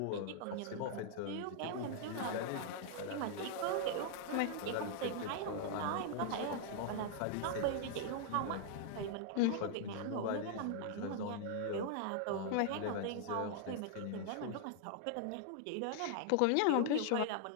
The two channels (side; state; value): both; different; correlation -0.01